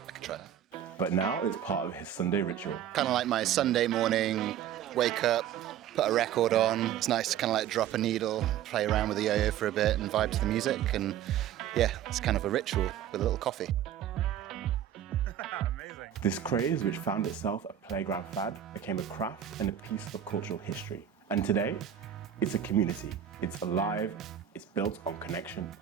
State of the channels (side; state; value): left; quieter; 10.1 dB